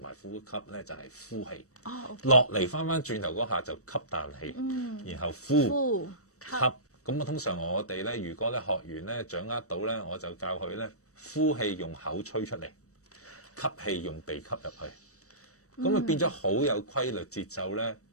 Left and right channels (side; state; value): right; late; 0.65 ms